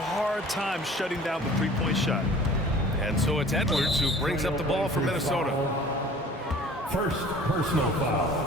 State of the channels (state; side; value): normal; both; correlation 0.47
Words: time shutting down the three-point shot. And so it's Edwards who brings up the ball for Minnesota. First personal